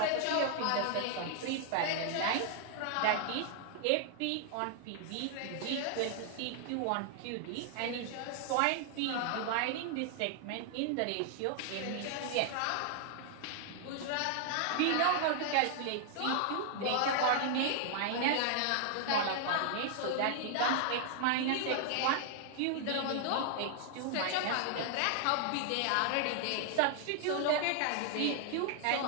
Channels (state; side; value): different; both; correlation 0.00